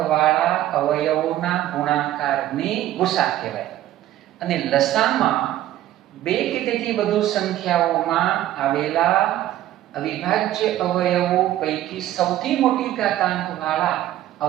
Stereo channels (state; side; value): quieter; left; 13.5 dB